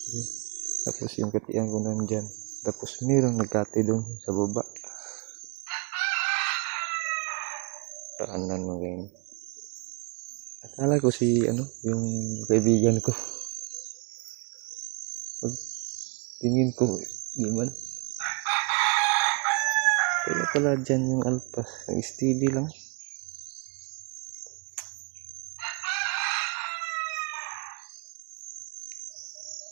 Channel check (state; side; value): quieter; left; 33.8 dB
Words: Tapos yung katian ko nandyan. Tapos mayroong nagkati dun sa baba. Taanan mo ganyan. Akala ko si ano yung kaibigan ko. Pag tingin ko di man. Kaya pala dyan yung alpas. Nag-steady lang.